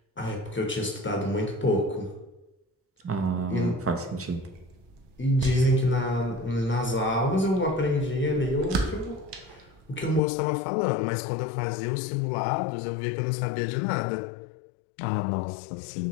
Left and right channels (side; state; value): right; drops out; at 10.2 s